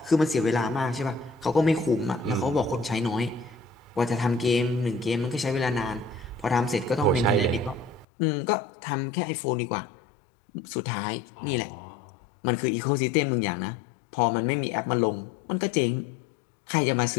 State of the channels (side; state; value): right; drops out; at 8.1 s